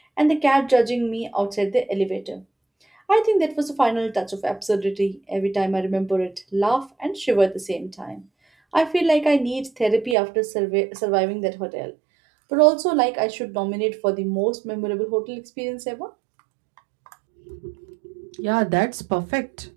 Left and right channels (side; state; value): left; drops out; at 10.2 s